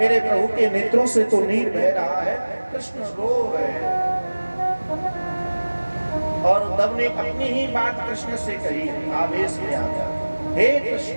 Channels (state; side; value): inverted; both; correlation -1.00